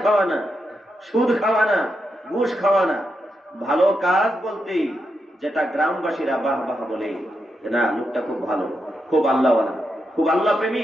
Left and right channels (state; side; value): normal; both; correlation 0.84